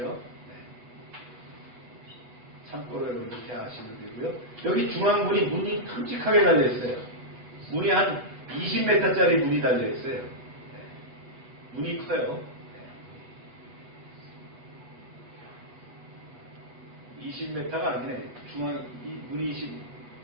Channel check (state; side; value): late; left; 8.4 ms